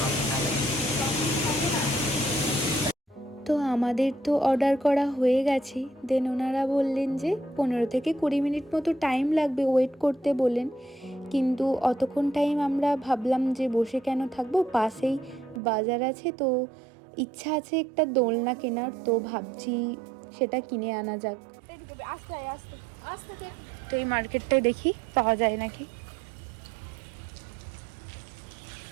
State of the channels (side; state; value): left; drops out; at 15.6 s